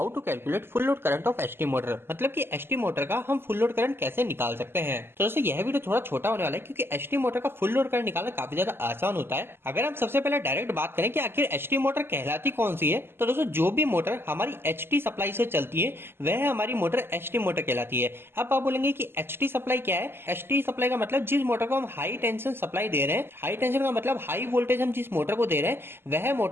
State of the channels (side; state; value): left; late; 0.11 ms